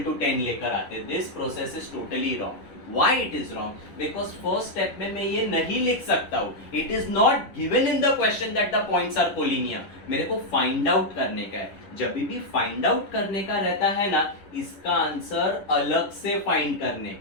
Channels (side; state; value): right; late; 10 ms